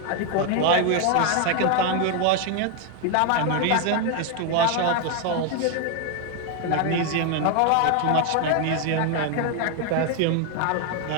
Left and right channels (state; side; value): different; both; correlation 0.01